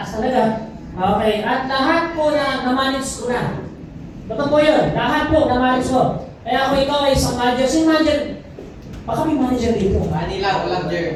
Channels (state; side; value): identical; both; correlation 1.00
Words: talaga. Okay, at lahat po na na-manage ko na. Totoo po yun. Lahat po na-manage ko. Kaya kung ikaw ay isang manager, sino manager? Baka may manager dito. Manila, walang